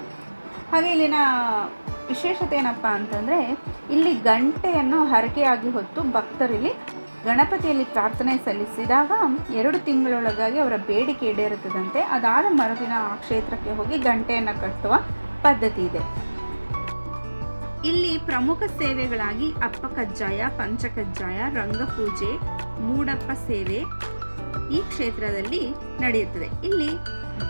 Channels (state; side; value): inverted; both; correlation -1.00